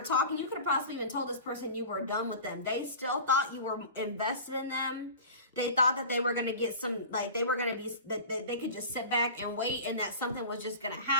talking, you could have possibly even told this person you were done with them. They still thought you were invested in them. They thought that they were going to get some, like, they were going to be, that they could just sit back and wait and that something was just going to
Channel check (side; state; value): both; inverted; correlation -0.36